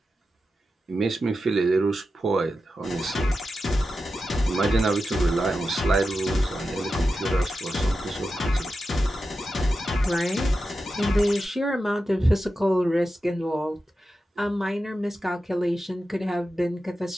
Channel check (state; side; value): normal; both; correlation 0.91